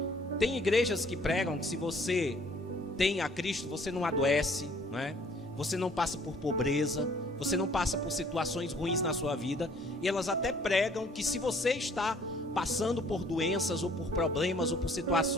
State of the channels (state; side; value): normal; both; correlation 0.58